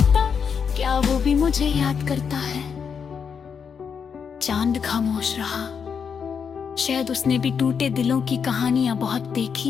क्या वो भी मुझे याद करता है? चांद खामोश रहा। शायद उसने भी टूटे दिलों की कहानियां बहुत देखी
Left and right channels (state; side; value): quieter; right; 6.6 dB